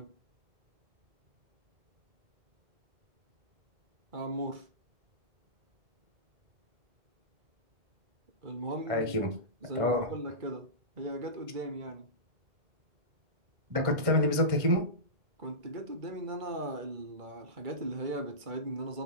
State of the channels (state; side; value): late; left; 1.6 ms